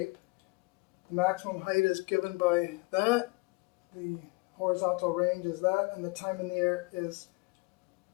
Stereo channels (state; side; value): quieter; right; 26.7 dB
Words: The maximum height is given by that, the horizontal range is that, and the time in the air is